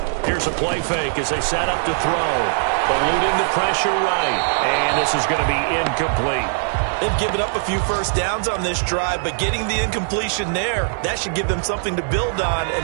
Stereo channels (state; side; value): silent; left; digital silence